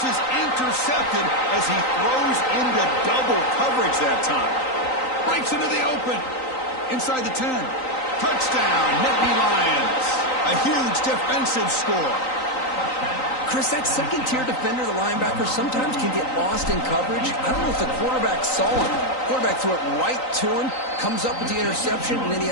is intercepted as he throws into double coverage that time. Breaks into the open. Inside the 10. Touchdown, Nittany Lions. A huge defensive score. Chris, that second-tier defender, the linebacker, sometimes can get lost in coverage. I don't know if the quarterback saw him. Quarterback threw it right to him, comes up with the interception, and then he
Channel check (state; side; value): late; right; 3.9 ms